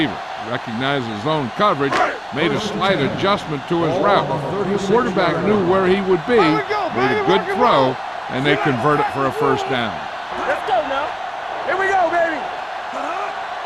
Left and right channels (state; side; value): identical; both; correlation 1.00